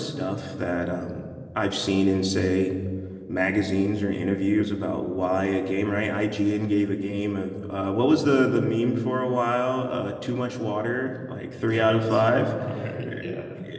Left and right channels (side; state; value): both; identical; correlation 1.00